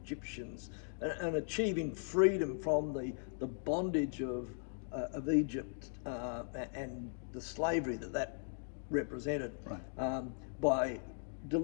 and achieving freedom from the bondage of Egypt and the slavery that represented, by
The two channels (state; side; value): silent; right; digital silence